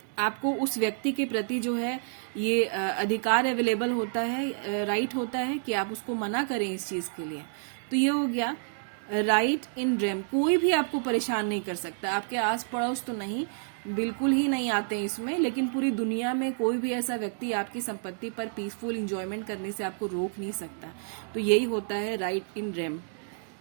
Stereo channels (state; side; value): silent; left; digital silence